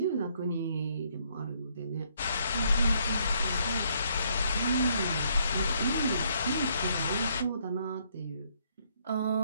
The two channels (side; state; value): both; inverted; correlation -0.69